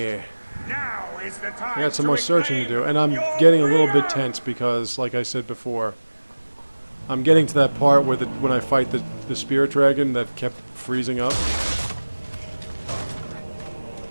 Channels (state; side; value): inverted; both; correlation -1.00